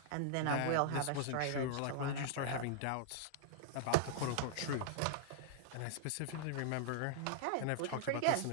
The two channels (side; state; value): both; different; correlation -0.01